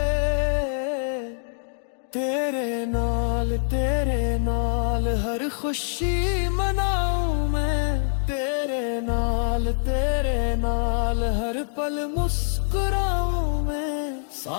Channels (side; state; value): right; silent; digital silence